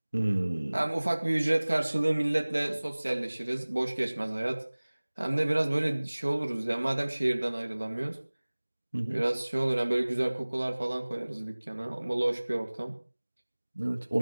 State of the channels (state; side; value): inverted; both; correlation -1.00